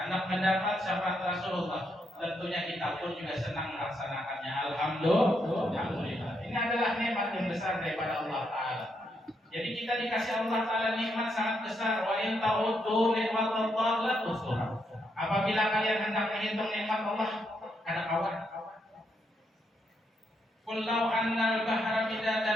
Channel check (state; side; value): normal; both; correlation 0.78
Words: mendapat syafaat Rasulullah. Tentunya kita pun juga senang melaksanakannya. Alhamdulillah. Ini adalah nikmat yang besar daripada Allah Ta'ala. Jadi kita dikasih Allah Ta'ala nikmat sangat besar. Wa in ta'uddu nikmatallahi la tuhsuha. Apabila kalian hendak menghitung nikmat Allah, ada kawan. Qul law anna al-bahra